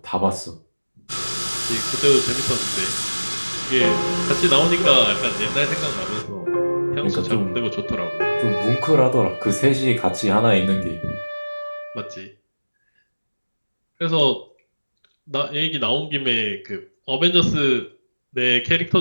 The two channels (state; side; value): inverted; both; correlation -1.00